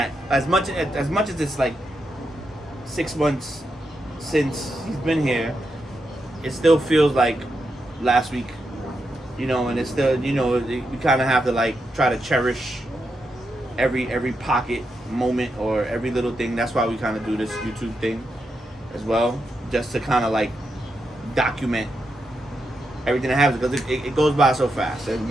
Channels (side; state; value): both; normal; correlation 0.85